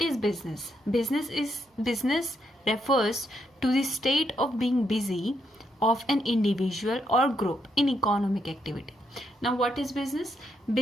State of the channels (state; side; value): normal; both; correlation 0.78